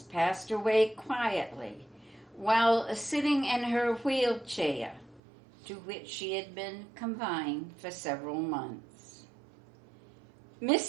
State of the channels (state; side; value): drops out; left; at 5.2 s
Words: passed away quietly while sitting in her wheelchair, to which she had been confined for several months.